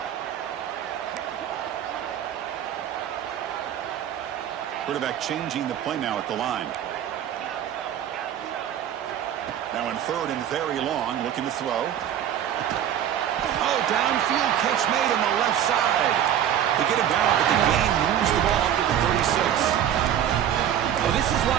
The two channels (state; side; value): quieter; left; 10.1 dB